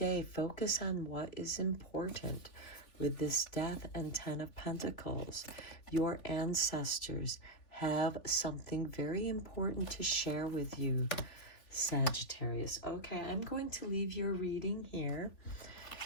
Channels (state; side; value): late; right; 3.7 ms